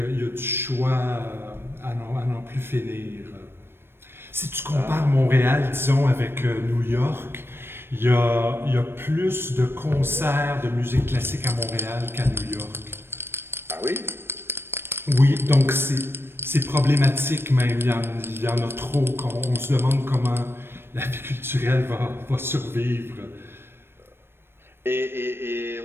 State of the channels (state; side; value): late; left; 0.11 ms